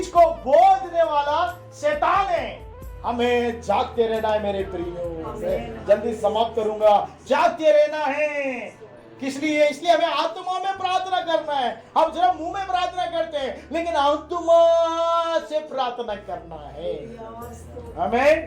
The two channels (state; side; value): identical; both; correlation 1.00